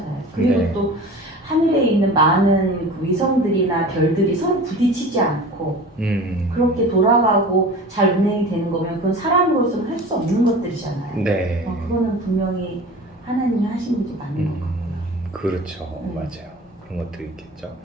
그리고 네. 또 하늘에 있는 많은 그 위성들이나 별들이 서로 부딪히지 않고 그렇게 돌아가고 잘 운행이 되는 거면 그건 사람으로서는 할 수 없는 것들이잖아요. 네. 그거는 분명히 하나님이 하신 일이 맞는 것 같고요. 그렇죠. 맞아요. 그런 것들이 있겠죠.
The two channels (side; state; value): both; normal; correlation 0.38